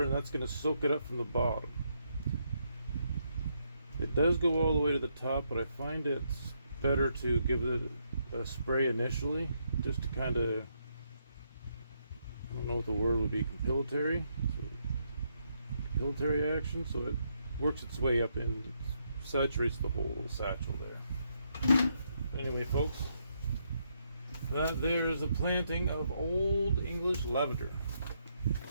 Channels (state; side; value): inverted; both; correlation -0.77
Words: and that's going to soak it up from the bottom. It does go all the way to the top, but I find it's better to give it a spray initially, just to kind of, I don't know what the word would be, compilatory action, so it works its way up and saturates the whole satchel there. Anyway, folks, that there is a planting of Old English Lavender.